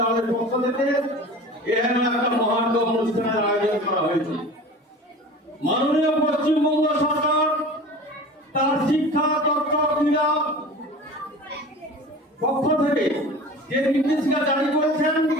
পক্ষ থেকে এখানে একটা মহান অনুষ্ঠানের আয়োজন করা হয়েছে। মাননীয় পশ্চিমবঙ্গ সরকার তার শিক্ষা তথ্য ক্রীড়া পক্ষ থেকে যে নির্দেশিকা জারি করেছেন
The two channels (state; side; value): normal; both; correlation 0.38